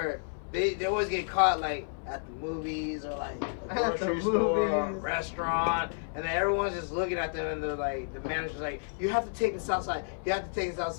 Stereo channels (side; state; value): right; silent; 56 dB below the other